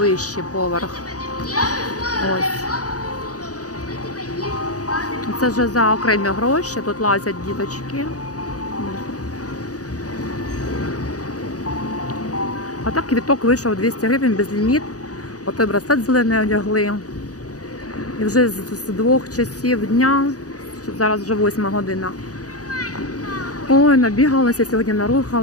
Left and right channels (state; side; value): late; right; 0.67 ms